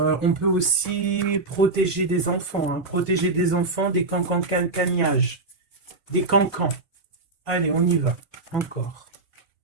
peut aussi protéger des enfants, hein, protéger des enfants des cancans-cagnages, des cancans. Allez, on y va, encore.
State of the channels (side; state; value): left; quieter; 3.4 dB